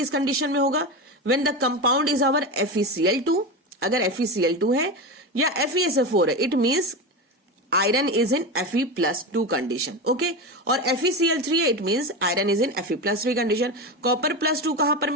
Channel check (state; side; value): normal; both; correlation 0.20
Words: कंडीशन में होगा? When the compound is our FeCl2। अगर FeCl2 है या FeSO4 है, it means iron is in Fe+2 condition. Okay, और FeCl3 है, it means iron is in Fe+3 condition. कॉपर+2 कहां पर